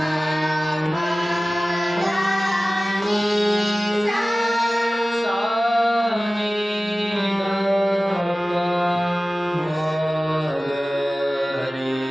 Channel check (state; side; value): normal; both; correlation 0.97